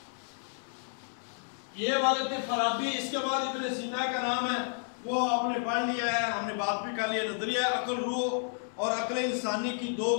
یہ والے تھے فارابی۔ اس کے بعد ابن سینا کا نام ہے، وہ آپ نے پڑھ لیا ہے، ہم نے بات بھی کر لیا۔ نظریہ عقل روح اور عقل انسانی کی دو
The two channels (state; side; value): silent; right; 57 dB below the other